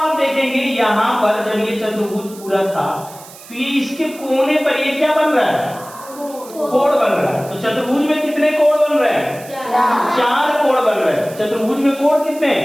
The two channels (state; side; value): noise; right; hiss, 19 dB below the sound